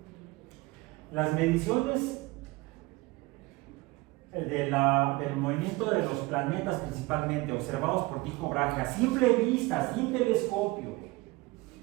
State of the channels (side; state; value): left; quieter; 22.0 dB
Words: Las mediciones del movimiento de los planetas, principalmente observados por Tycho Brahe a simple vista, sin telescopio,